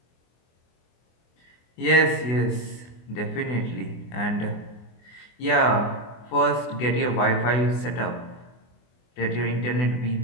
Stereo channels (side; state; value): right; late; 24 ms